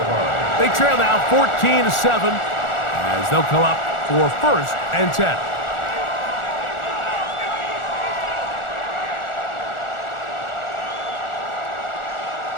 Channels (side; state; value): right; late; 1.4 ms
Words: They trail now 14-7 as they'll come up for 1st and 10.